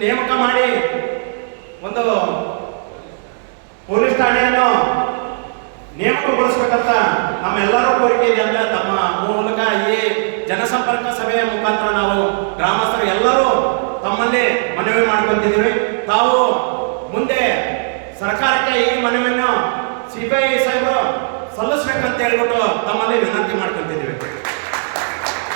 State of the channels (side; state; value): left; silent; digital silence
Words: ನೇಮಕ ಮಾಡಿ ಒಂದು ಪೊಲೀಸ್ ಠಾಣೆಯನ್ನು ನೇಮಕಗೊಳಿಸಬೇಕಂತ ನಮ್ಮೆಲ್ಲರೂ ಕೋರಿಕೆ ಇದೆ ಅಂತ ತಮ್ಮ ಮೂಲಕ ಈ ಜನಸಂಪರ್ಕ ಸಭೆಯ ಮುಖಾಂತರ ನಾವು ಗ್ರಾಮಸ್ಥರು ಎಲ್ಲರೂ ತಮ್ಮಲ್ಲಿ ಮನವಿ ಮಾಡ್ಕೊಂತಿದ್ದೀವಿ. ತಾವು ಮುಂದೆ ಸರ್ಕಾರಕ್ಕೆ ಈ ಮನವಿಯನ್ನು CPI ಸಾಹೇಬರು ಸಲ್ಲಿಸ್ಬೇಕಂತ ಹೇಳ್ಬಿಟ್ಟು ತಮ್ಮಲ್ಲಿ ವಿನಂತಿ ಮಾಡ್ಕೊಂತಿದ್ದೀವಿ.